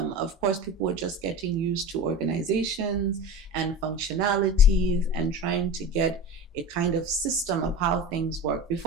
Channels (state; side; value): normal; both; correlation 0.30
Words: course, people were just getting used to organizations and functionalities and trying to get a kind of system of how things work.